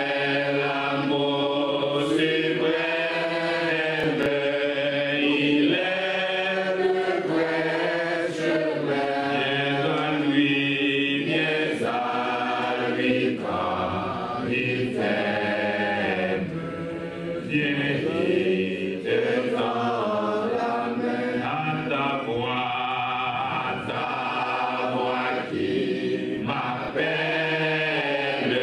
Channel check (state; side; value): identical; both; correlation 1.00